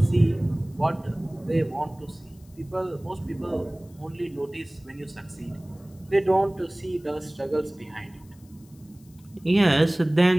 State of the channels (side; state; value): left; noise; hiss, 29 dB below the sound